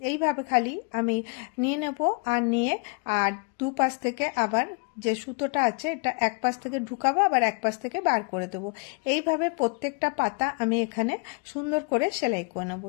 এইভাবে খালি আমি নিয়ে নেব, আর নিয়ে আর দুপাশ থেকে আবার যে সুতোটা আছে এটা এক পাশ থেকে ঢুকাবো, আবার এক পাশ থেকে বার করে দেবো। এইভাবে এইভাবে প্রত্যেকটা পাতা আমি এখানে সুন্দর করে সেলাই করে নেব।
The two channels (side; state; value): right; quieter; 33.5 dB